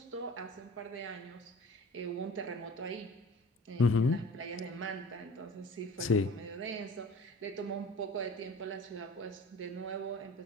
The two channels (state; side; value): normal; both; correlation 0.42